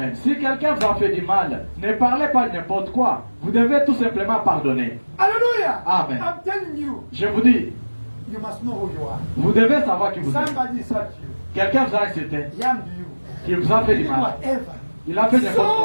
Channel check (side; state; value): both; inverted; correlation -1.00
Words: Si quelqu'un vous a fait du mal, ne parlez pas n'importe quoi. Vous devez tout simplement pardonner. Hallelujah. Amen. I'm telling you, Je vous dis, you must know who you are. vous devez savoir qui vous êtes. Somebody hurt you. Quelqu'un vous a insulté, He harmed you. qui vous a fait He du did mal. whatever. Il a fait n'importe